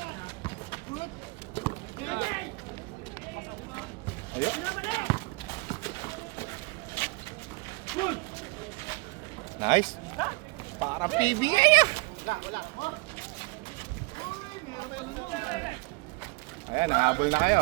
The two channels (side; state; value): left; quieter; 26.6 dB